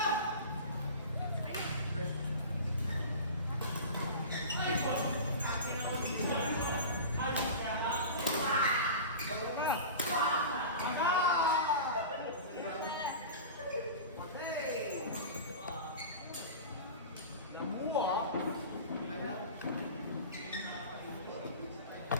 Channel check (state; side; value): inverted; both; correlation -0.33